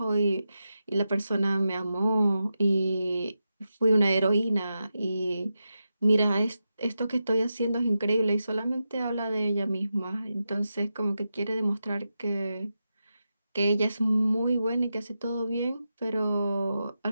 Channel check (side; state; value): both; inverted; correlation -0.89